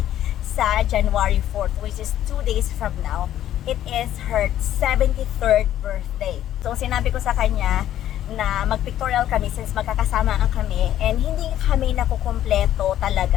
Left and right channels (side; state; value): right; quieter; 11.9 dB